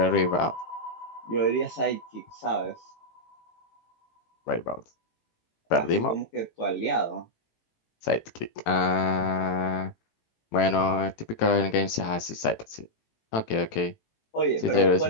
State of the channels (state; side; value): late; right; 18 ms